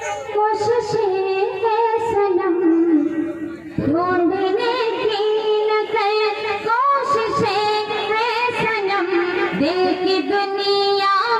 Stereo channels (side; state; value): both; identical; correlation 1.00